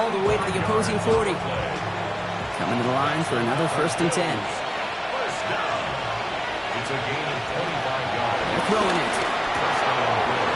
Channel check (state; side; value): identical; both; correlation 1.00